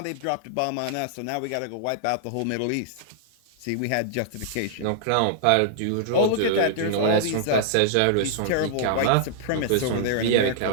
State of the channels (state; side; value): different; both; correlation -0.01